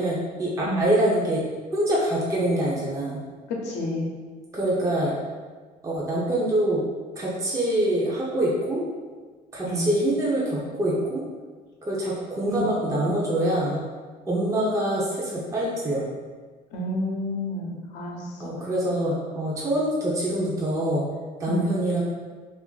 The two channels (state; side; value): normal; both; correlation 0.50